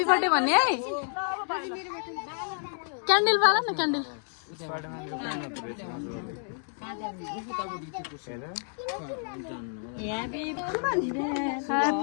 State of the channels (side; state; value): right; silent; 58 dB below the other